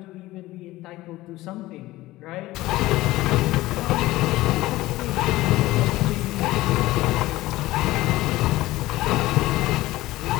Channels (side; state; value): right; quieter; 17.7 dB